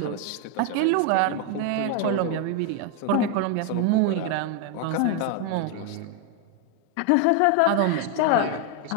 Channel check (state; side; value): different; both; correlation 0.01